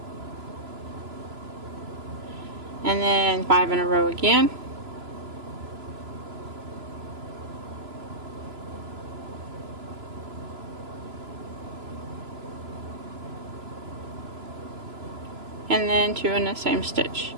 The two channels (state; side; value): late; left; 3.0 ms